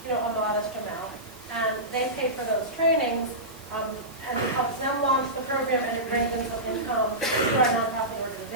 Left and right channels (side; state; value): right; noise; hiss, 21 dB below the sound